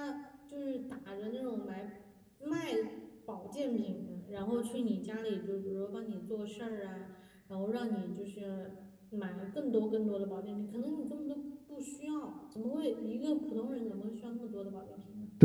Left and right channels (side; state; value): both; identical; correlation 1.00